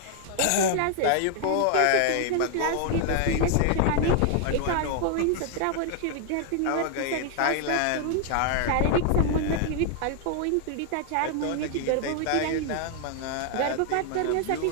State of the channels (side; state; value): both; different; correlation 0.00